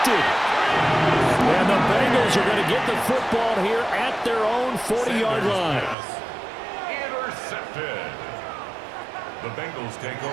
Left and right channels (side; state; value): left; drops out; at 6.0 s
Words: And the Bengals are going to get the football here at their own 40-yard line. Intercepted. The Bengals take